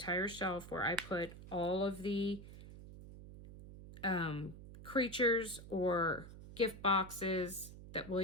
shelf where I put all of the creatures or gift boxes that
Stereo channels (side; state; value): right; noise; hum, 15 dB below the sound